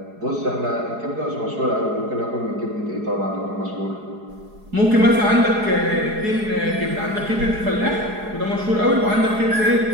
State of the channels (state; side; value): late; left; 4.8 ms